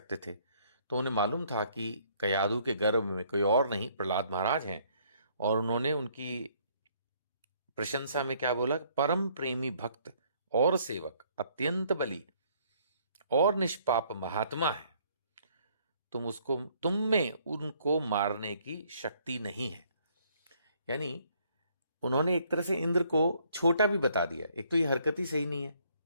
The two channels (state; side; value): inverted; both; correlation -0.64